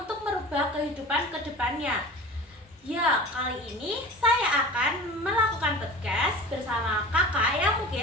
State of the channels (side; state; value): both; normal; correlation 0.37